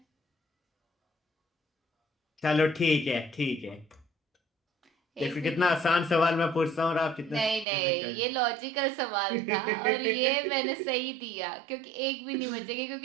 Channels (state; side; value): drops out; left; at 7.7 s